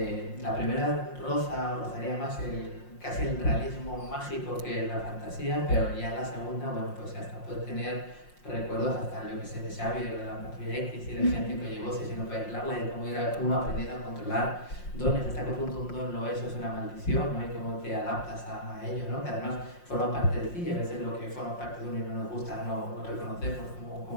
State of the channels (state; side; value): late; right; 5.6 ms